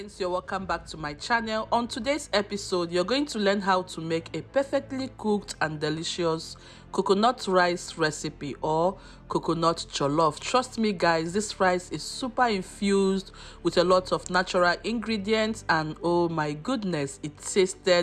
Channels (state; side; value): identical; both; correlation 1.00